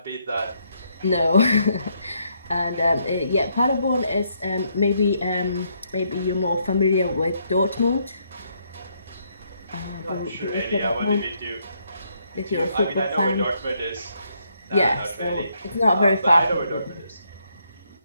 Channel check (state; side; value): inverted; both; correlation -0.74